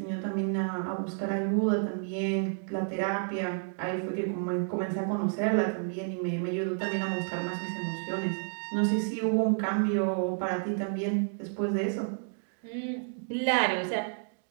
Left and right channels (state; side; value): silent; left; digital silence